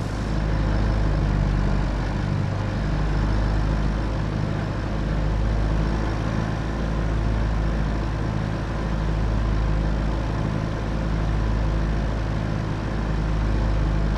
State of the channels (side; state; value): both; identical; correlation 1.00